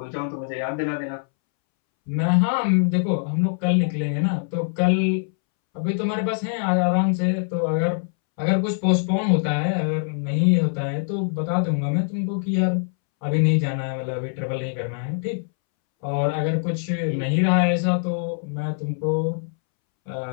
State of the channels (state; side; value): silent; right; 63 dB below the other